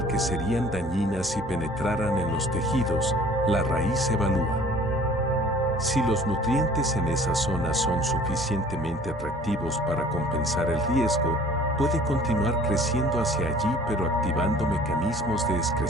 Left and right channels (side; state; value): both; normal; correlation 0.50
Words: que serían dañinas si penetraran en los tejidos, la raíz evalúa. Si los nutrientes en esa zona son suficientemente atractivos para compensar el riesgo, puede continuar creciendo hacia allí pero activando mecanismos de